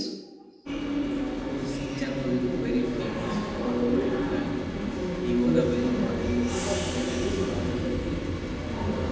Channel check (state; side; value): identical; both; correlation 1.00